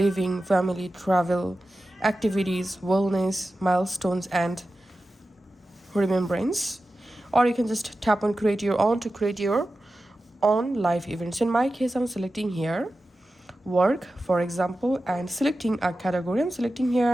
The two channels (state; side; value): normal; both; correlation 0.93